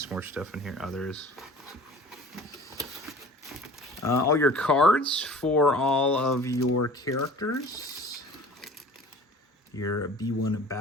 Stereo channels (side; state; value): both; normal; correlation 0.44